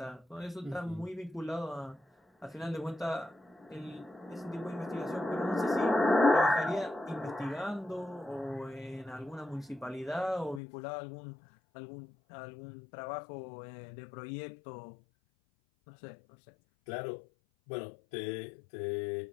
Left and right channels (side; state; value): right; drops out; at 10.6 s